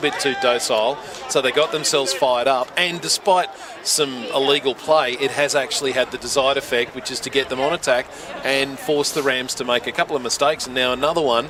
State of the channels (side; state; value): both; identical; correlation 1.00